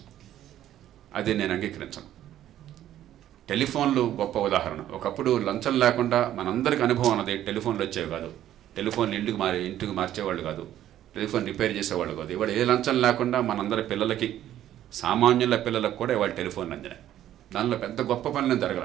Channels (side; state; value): left; quieter; 12.1 dB